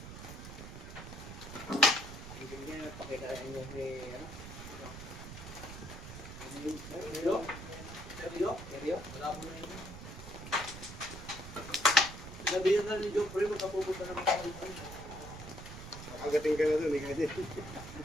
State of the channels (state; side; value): noise; right; rumble, 11 dB below the sound